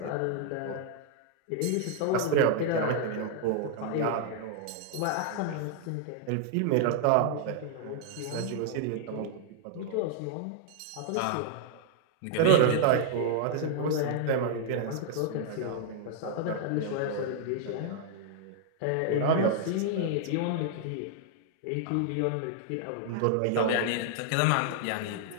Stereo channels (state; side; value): different; both; correlation 0.00